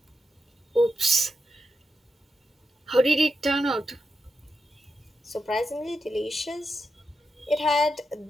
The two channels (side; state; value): both; normal; correlation 0.87